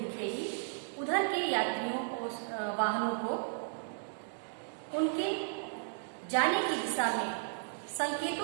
उधर के यात्रियों को, वाहनों को उनके जाने की दिशा में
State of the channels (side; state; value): left; silent; digital silence